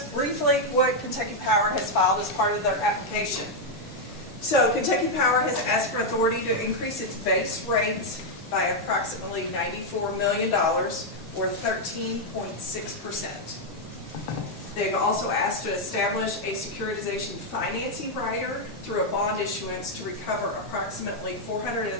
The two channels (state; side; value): normal; both; correlation 0.00